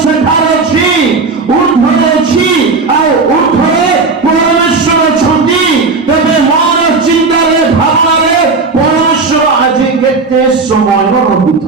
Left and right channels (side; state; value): left; quieter; 4.1 dB